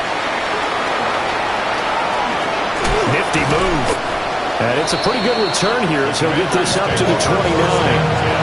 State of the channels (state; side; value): identical; both; correlation 1.00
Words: Nifty move. And it's a pretty good return here as he'll get this up to the 29.